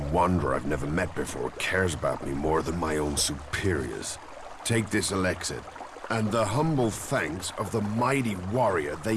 wanderer I've never met before cares about me more than my own superiors. Take this ELEX, and the humble thanks of the mighty warrior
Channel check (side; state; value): both; identical; correlation 1.00